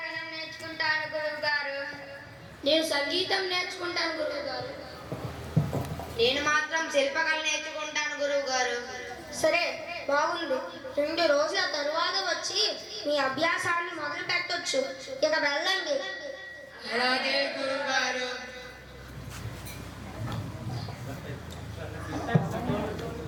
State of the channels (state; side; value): identical; both; correlation 1.00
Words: నేర్చుకుంటాను గురువు గారు. నేను సంగీతం నేర్చుకుంటాను గురువు గారు. నేను మాత్రం శిల్పకళ నేర్చుకుంటాను గురువు గారు. సరే, బాగుంది. 2 రోజుల తరువాత వచ్చి మీ అభ్యాసాన్ని మొదలు పెట్టొచ్చు. ఇక వెళ్ళండి. అలాగే గురువు గారు.